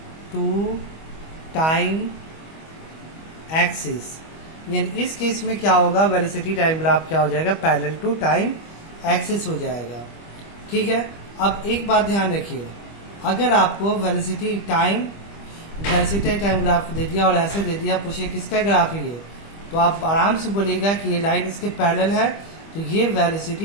to time axis. यानी इस केस में क्या होगा, वेलोसिटी टाइम ग्राफ क्या हो जाएगा, पैरेलल टू टाइम एक्सिस हो जाएगा। ठीक है, अब एक बात ध्यान रखिए, अगर आपको वेलोसिटी टाइम ग्राफ दे दिया और ऐसे दे दिया, पूछे किसका ग्राफ है ये, तो आप आराम से बोलेगा कि ये लाइन इसके पैरेलल है, तो ये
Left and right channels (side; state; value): right; late; 25 ms